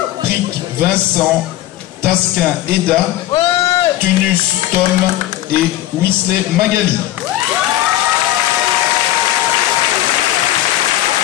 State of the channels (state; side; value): quieter; right; 14.3 dB